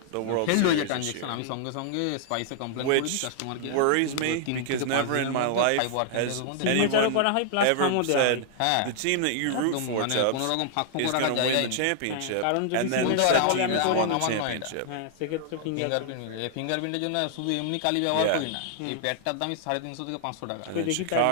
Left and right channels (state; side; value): different; both; correlation -0.01